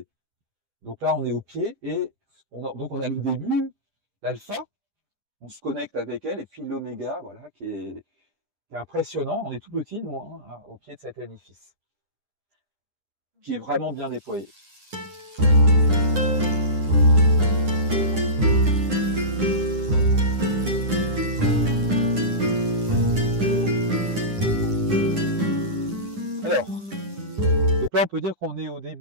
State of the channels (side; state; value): left; late; 9.9 ms